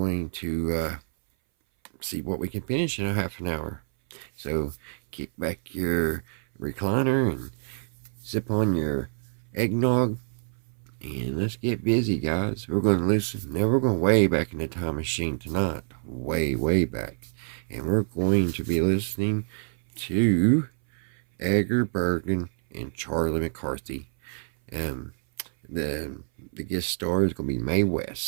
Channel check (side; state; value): left; silent; 58 dB below the other